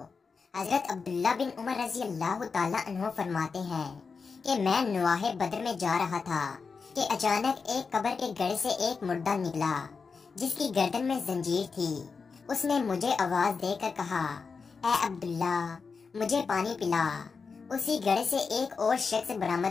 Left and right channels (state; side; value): quieter; right; 5.0 dB